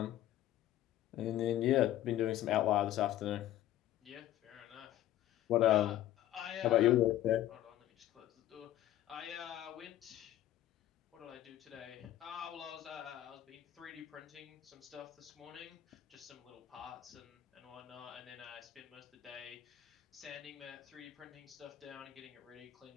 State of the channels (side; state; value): right; quieter; 13.1 dB